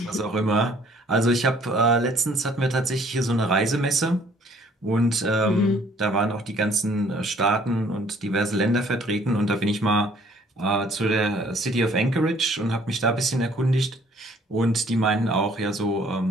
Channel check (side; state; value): both; normal; correlation 0.59